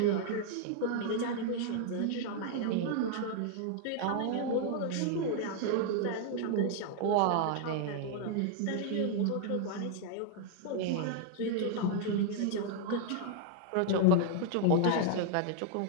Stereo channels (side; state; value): both; different; correlation 0.00